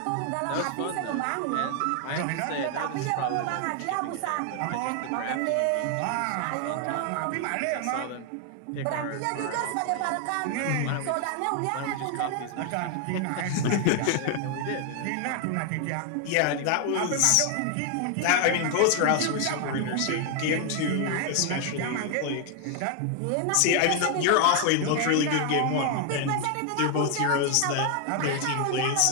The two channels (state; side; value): different; both; correlation 0.00